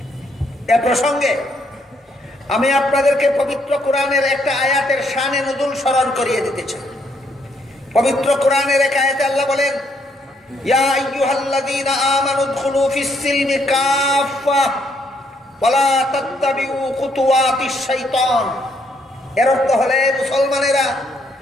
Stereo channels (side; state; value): both; normal; correlation 0.72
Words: এ প্রসঙ্গে আমি আপনাদেরকে পবিত্র কোরআনের একটা আয়াতের শানে নুজুল স্মরণ করিয়ে দিতে চাই। পবিত্র কোরআনের এক আয়াতে আল্লাহ বলেন, ইয়া আইয়ুহাল্লাযীনা আমানু উদখুলু ফিস-সিলমি কাফা ওয়ালা তাত্তাবিউ খুতুওয়াতিশ শাইতান। এর অর্থ হলে, মুসলমানেরা